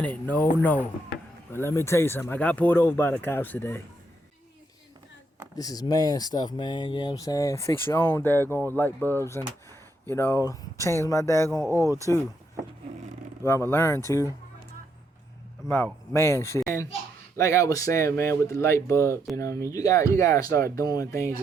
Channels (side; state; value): both; normal; correlation 0.77